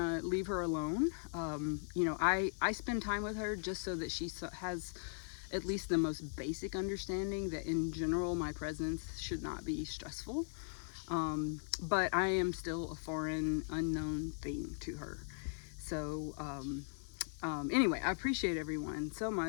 leave her alone. I spend time with her just so that she has at least the most basic understanding that in general my presence should not be stressful. But I am still a foreign, unknown thing to her. So anyway, I appreciate everyone so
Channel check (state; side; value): silent; right; digital silence